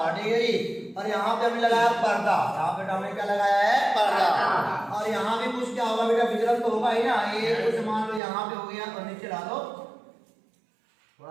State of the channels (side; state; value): left; drops out; at 8.2 s